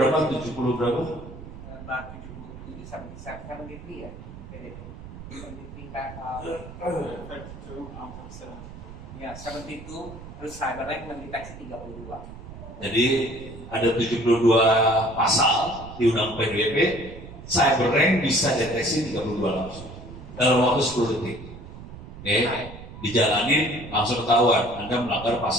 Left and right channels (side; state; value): right; noise; rumble, 14 dB below the sound